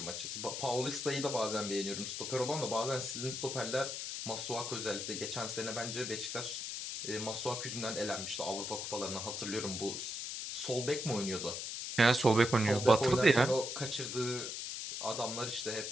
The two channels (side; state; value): left; noise; hiss, 5 dB below the sound